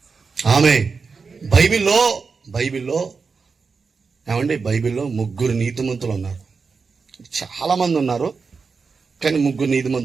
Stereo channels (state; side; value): quieter; left; 4.9 dB